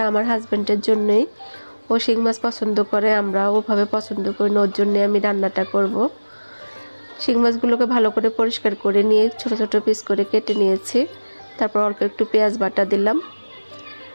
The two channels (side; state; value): both; inverted; correlation -1.00